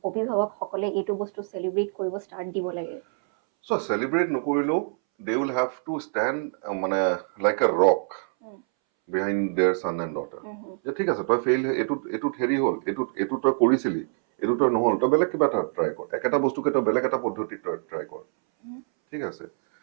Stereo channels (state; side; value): silent; left; 61 dB below the other